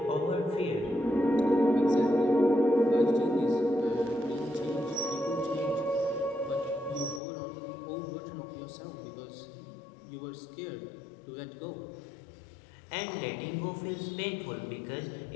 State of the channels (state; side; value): drops out; right; at 7.2 s